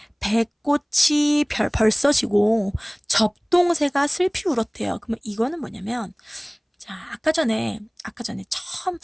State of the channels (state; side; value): identical; both; correlation 1.00